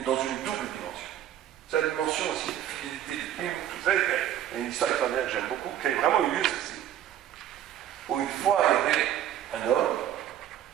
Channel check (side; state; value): left; quieter; 11.3 dB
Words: dans une double dimension. C'est la dimension aussi de fidélité du film, tout ça. Il y a une histoire extraordinaire que j'aime beaucoup, qui a vraiment eu lieu ceci. Où une fois, il y avait un homme,